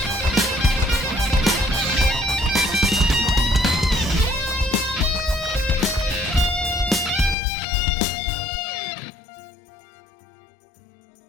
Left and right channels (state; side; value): drops out; right; at 7.4 s